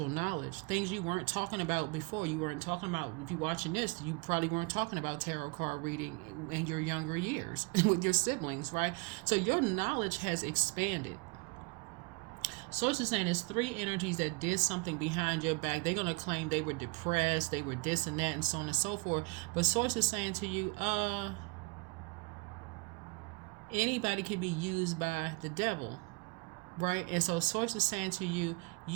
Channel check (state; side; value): quieter; left; 27.3 dB